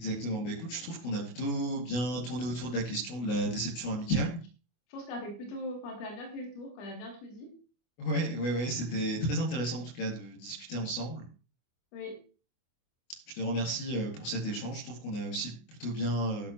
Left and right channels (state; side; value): late; right; 24 ms